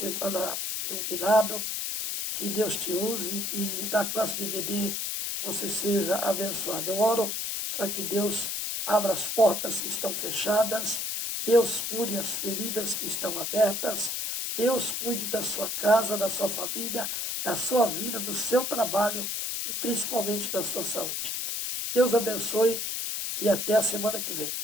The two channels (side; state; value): left; noise; hiss, 2 dB below the sound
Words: iluminado, que Deus te use, que na classe de BD você seja abençoado. Eu oro para que Deus abra as portas que estão fechadas, Deus cure as feridas que estão abertas, Deus cuide da sua casa, da sua família, da sua vida, do seu trabalho e principalmente da sua saúde. Deus abençoe e até a semana que vem.